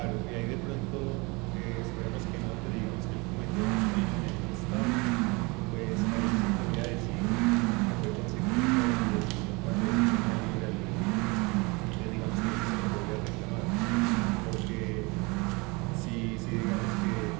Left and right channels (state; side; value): quieter; left; 27.0 dB